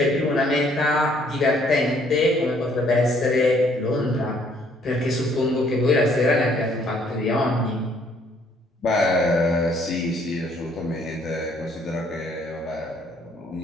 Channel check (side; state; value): both; normal; correlation 0.64